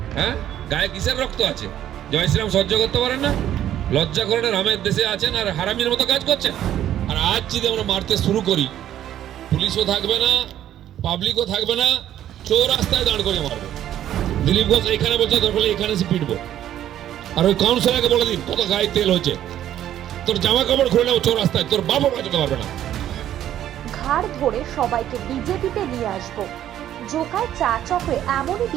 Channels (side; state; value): left; quieter; 11.5 dB